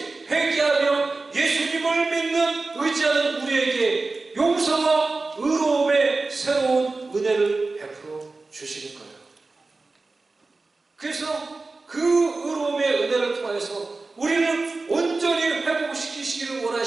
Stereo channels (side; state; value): left; quieter; 3.6 dB